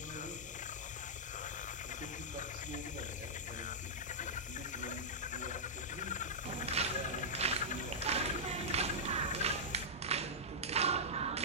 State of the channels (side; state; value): both; normal; correlation -0.12